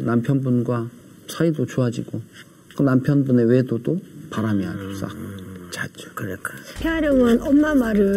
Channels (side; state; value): both; identical; correlation 1.00